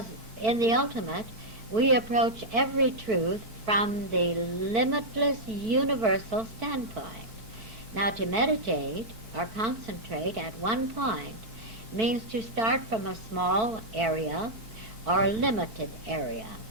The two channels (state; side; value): late; left; 4.5 ms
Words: in the ultimate, we approach every truth from the limitless universal standpoint. Now, to meditate or concentrate at one point means to start from a small area or a limited area.